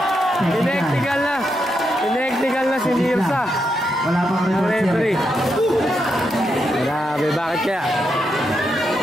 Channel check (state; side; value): normal; both; correlation 0.83